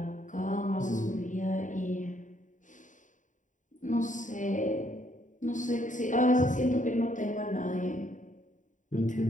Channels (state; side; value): late; right; 0.37 ms